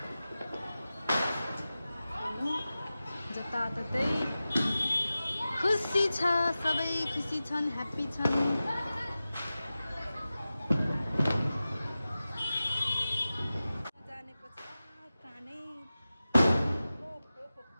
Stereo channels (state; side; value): inverted; both; correlation -0.95